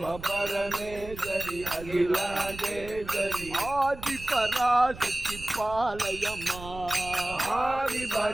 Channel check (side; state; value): right; noise; rumble, 14 dB below the sound